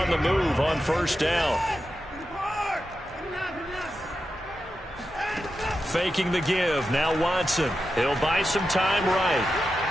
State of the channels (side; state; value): both; normal; correlation 0.90